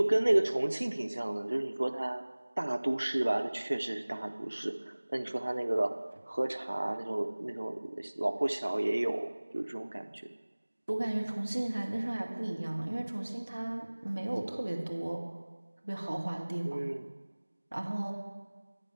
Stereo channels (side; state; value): both; inverted; correlation -1.00